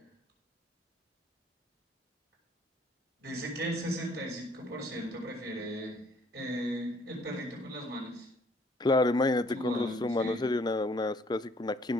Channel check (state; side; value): normal; both; correlation 0.62